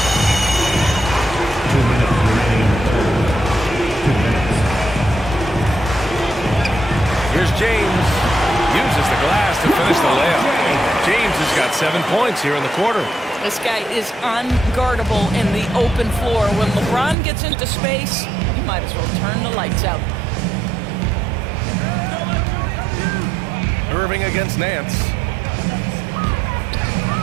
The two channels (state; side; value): drops out; left; at 17.2 s